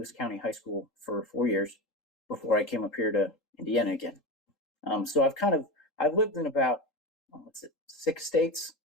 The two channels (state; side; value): normal; both; correlation 0.22